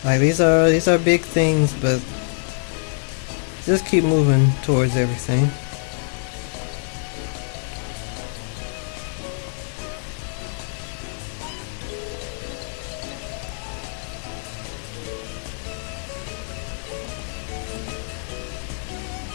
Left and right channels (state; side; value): silent; right; digital silence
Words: Like these are big things, but just keep moving towards everything.